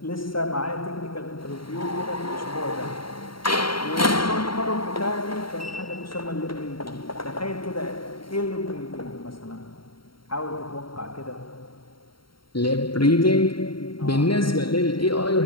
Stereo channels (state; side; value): late; right; 0.73 ms